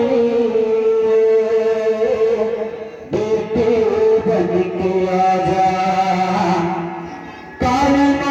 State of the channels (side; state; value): both; identical; correlation 1.00